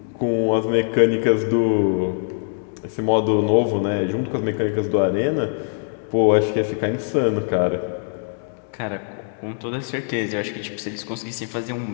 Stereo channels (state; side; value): silent; right; digital silence